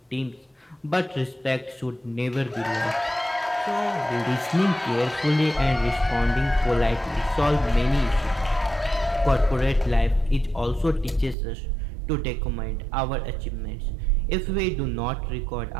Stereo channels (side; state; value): left; drops out; at 11.4 s